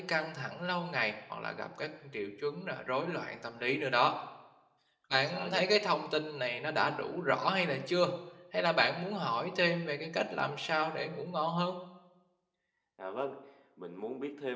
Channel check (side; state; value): both; identical; correlation 1.00